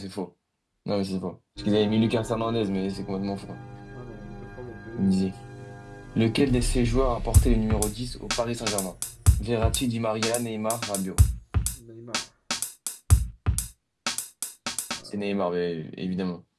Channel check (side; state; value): both; identical; correlation 1.00